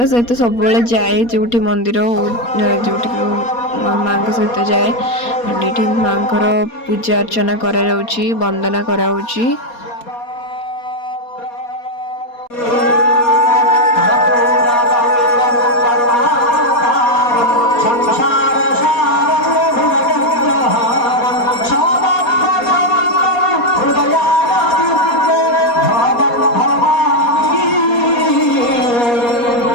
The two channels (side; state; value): right; late; 4.2 ms